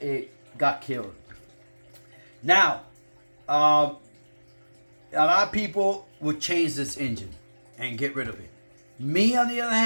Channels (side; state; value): both; inverted; correlation -1.00